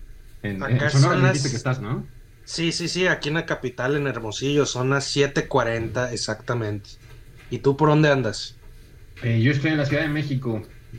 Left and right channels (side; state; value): both; identical; correlation 1.00